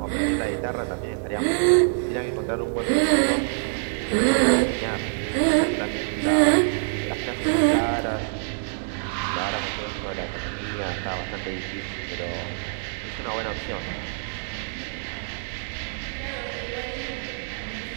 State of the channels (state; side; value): silent; left; digital silence